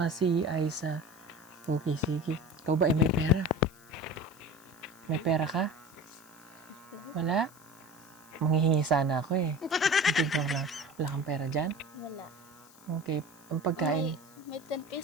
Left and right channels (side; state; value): left; noise; hiss, 25 dB below the sound